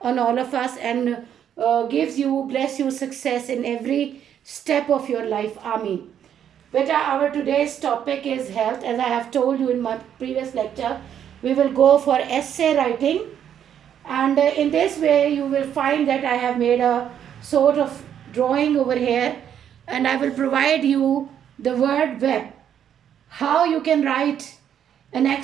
on all of us and bless you success in every step of your life. Ameen. Beta, our today's topic is health. As I have told you in my previous lecture, we will go for essay writing. And in this way, you will find that I have made a sort of drawing over here, and I will provide you the word web. How you can write an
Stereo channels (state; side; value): quieter; left; 9.3 dB